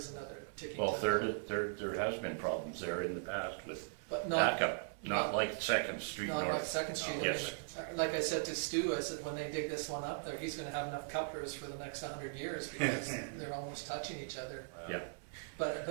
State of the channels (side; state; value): left; silent; 52 dB below the other